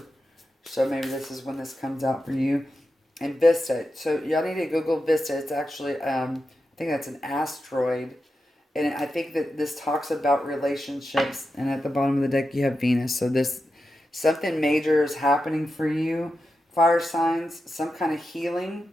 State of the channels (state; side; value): normal; both; correlation 0.89